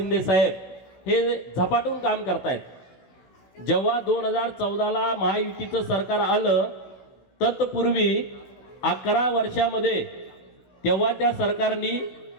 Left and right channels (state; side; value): late; right; 16 ms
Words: साहेब हे झपाटून काम करतायत। जेव्हा 2014ला महायुतीचं सरकार आलं तत्पूर्वी 11 वर्षामध्ये तेव्हा त्या सरकारने